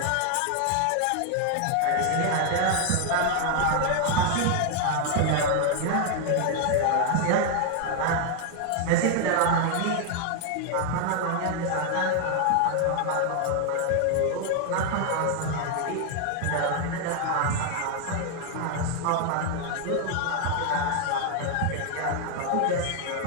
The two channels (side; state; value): both; different; correlation 0.00